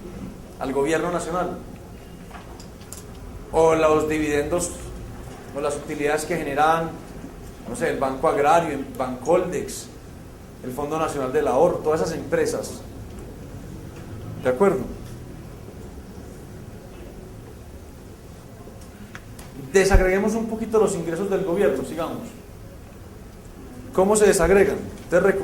al gobierno nacional. o los dividendos o las utilidades que generan, no sé, el Banco Agrario, Bancoldex, el Fondo Nacional del Ahorro, todas esas empresas. ¿De acuerdo? Desagreguemos un poquito los ingresos del gobierno, sigamos. ¿Cómo se desagregan? Entonces,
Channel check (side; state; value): both; identical; correlation 1.00